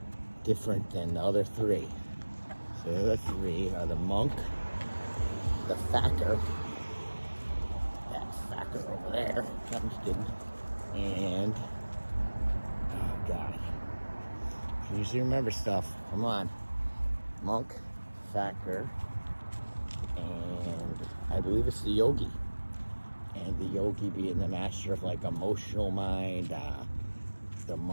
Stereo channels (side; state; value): both; inverted; correlation -1.00